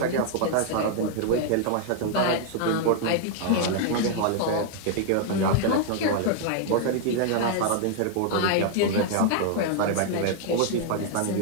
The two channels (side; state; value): both; different; correlation -0.01